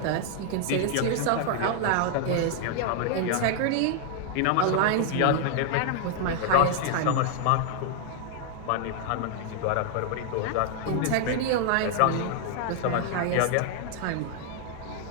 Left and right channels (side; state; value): both; different; correlation 0.00